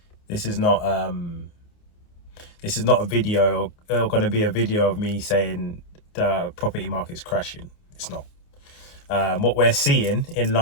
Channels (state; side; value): late; right; 28 ms